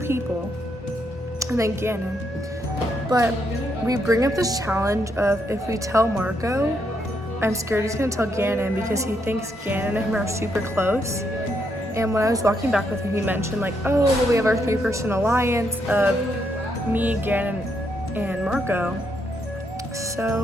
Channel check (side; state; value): both; normal; correlation 0.77